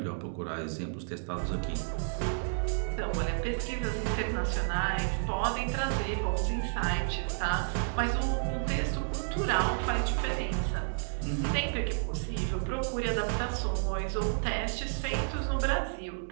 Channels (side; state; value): left; silent; digital silence